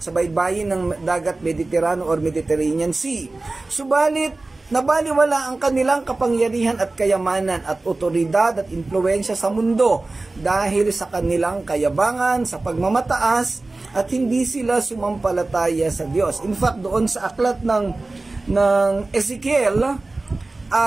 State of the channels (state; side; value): quieter; left; 3.2 dB